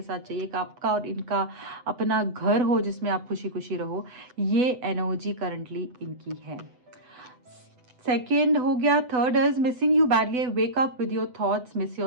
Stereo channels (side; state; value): left; late; 8.0 ms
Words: साथ चाहिए, एक आपका और इनका अपना घर हो जिसमें आप खुशी खुशी रहो, ये एनर्जी करंटली इनकी है। सेकेंड हो गया। Third is missing you badly, wake up with your thoughts, miss